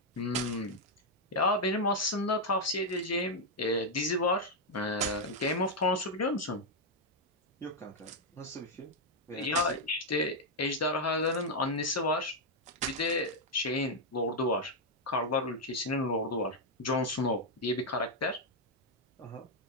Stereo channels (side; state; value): both; normal; correlation 0.00